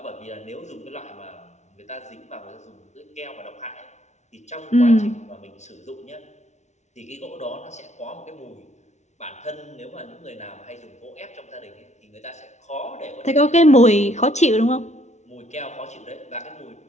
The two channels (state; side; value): late; right; 0.33 ms